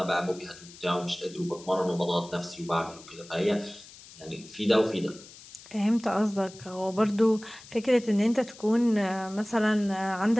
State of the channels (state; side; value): noise; left; hiss, 19 dB below the sound